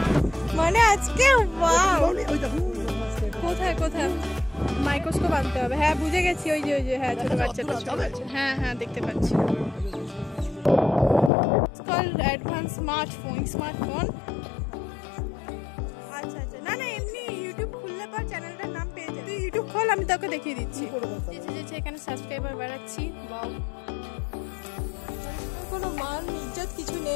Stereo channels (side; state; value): right; drops out; at 11.3 s